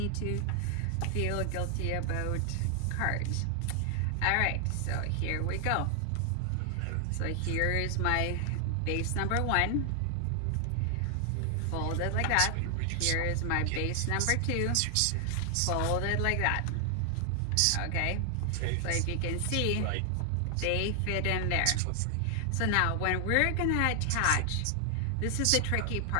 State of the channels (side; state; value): both; different; correlation 0.00